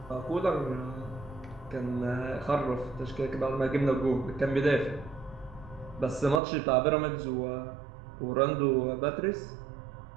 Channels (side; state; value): left; drops out; at 6.4 s